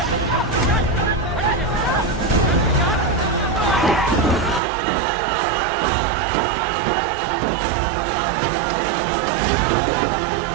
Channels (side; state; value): left; drops out; at 4.6 s